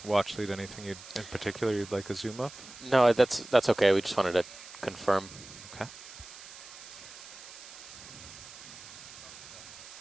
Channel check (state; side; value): noise; right; hiss, 16 dB below the sound